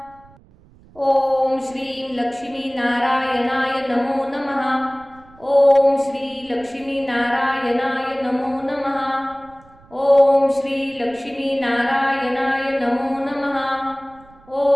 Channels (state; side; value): noise; right; rumble, 26 dB below the sound